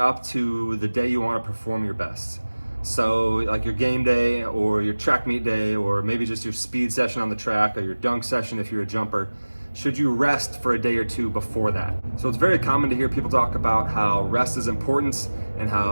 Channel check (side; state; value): both; inverted; correlation -1.00